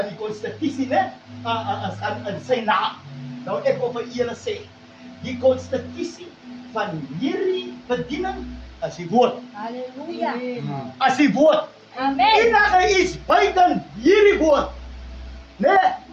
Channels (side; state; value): both; identical; correlation 1.00